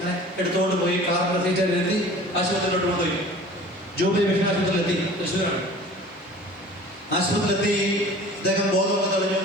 എടുത്തുകൊണ്ട് പോയി കാറിന്റെ സീറ്റിലെത്തി ആശുപത്രിയിലോട്ട് കൊണ്ടുപോയി. ജൂബിലി മിഷൻ ആശുപത്രിയിലെത്തി, തൃശ്ശൂരാണ്. ആശുപത്രിയിലെത്തി അദ്ദേഹം ബോധമൊക്കെ തെളിഞ്ഞു.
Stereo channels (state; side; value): normal; both; correlation 0.44